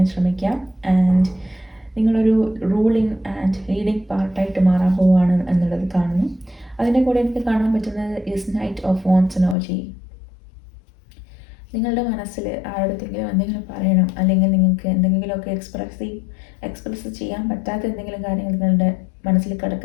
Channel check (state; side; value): drops out; right; at 9.6 s